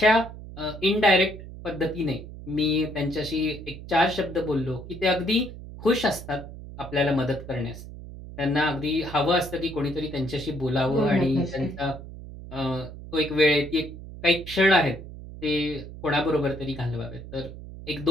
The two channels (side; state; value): right; noise; hum, 13 dB below the sound